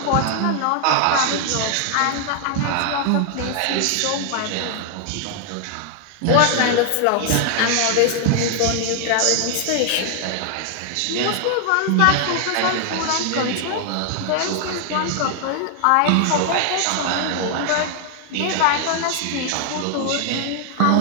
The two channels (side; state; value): both; different; correlation 0.00